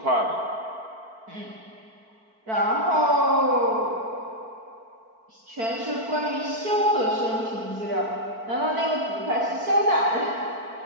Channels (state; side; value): late; left; 4.5 ms